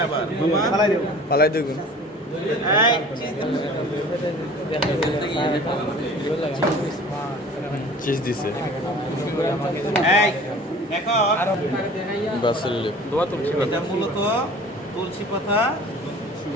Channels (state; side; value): normal; both; correlation 0.45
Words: আবার মামা। পালাই দেখুন। এই চিজ চিজ দিছে এই দেখো, বাসেল লিপ দোয়া তুলছি এটা মূলত তুলসী পাতা।